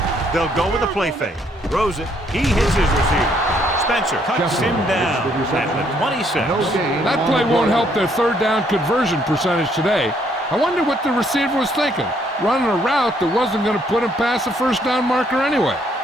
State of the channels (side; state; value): both; normal; correlation 0.69